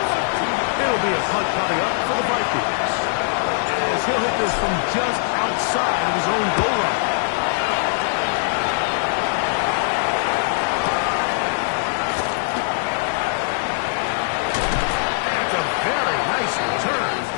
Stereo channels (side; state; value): right; silent; 65 dB below the other